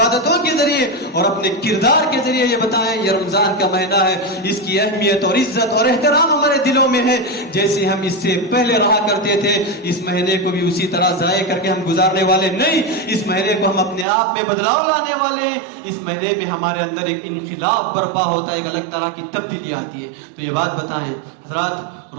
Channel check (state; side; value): drops out; left; at 14.1 s